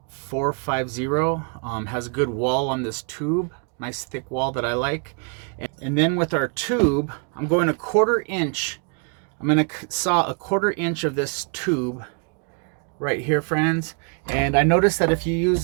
has a good wall on this tube. Nice thick wall that I like. And then with our tube, I'm going 1/4 inch. I'm going to saw 1/4 inch of this tube right here, friends. And I noticed that if you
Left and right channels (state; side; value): quieter; left; 39.4 dB